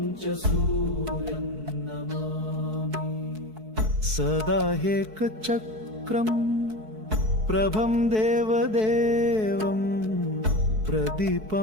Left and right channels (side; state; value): left; late; 4.6 ms